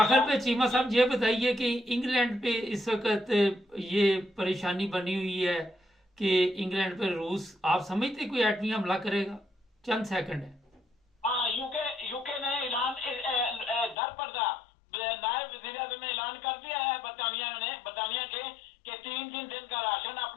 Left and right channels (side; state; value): right; drops out; at 14.0 s